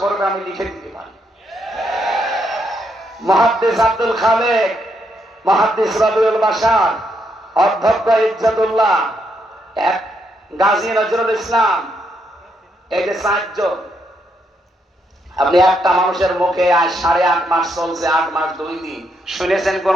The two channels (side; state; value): both; normal; correlation 0.77